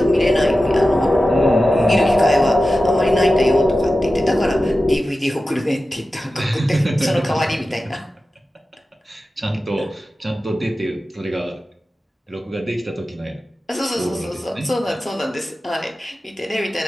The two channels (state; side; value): normal; both; correlation 0.94